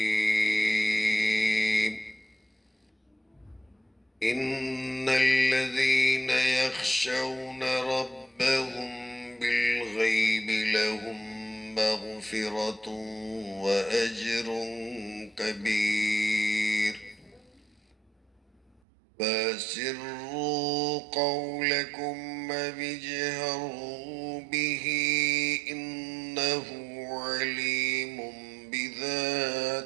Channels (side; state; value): left; drops out; at 18.8 s